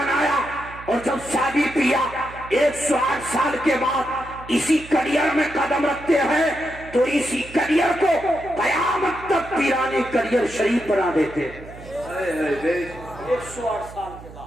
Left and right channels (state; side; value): noise; right; hum, 17 dB below the sound